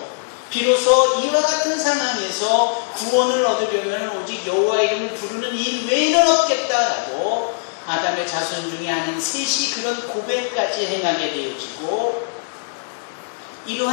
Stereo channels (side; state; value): right; silent; 65 dB below the other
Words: 비로소 이와 같은 상황에서 구원을 얻으려면 오직 여호와 이름을 부르는 일 외에는 없겠다라고 아담의 자손 중에 아닌 셋이 그런 고백까지 행하게 되어지고,